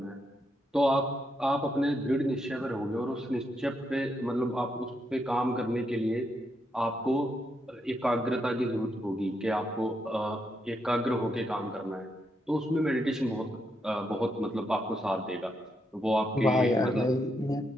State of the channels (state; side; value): normal; both; correlation 0.80